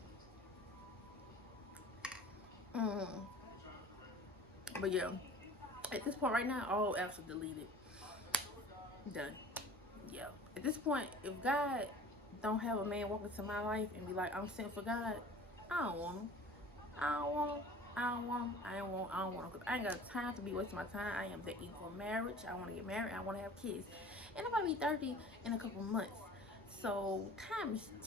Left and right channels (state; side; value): normal; both; correlation 0.44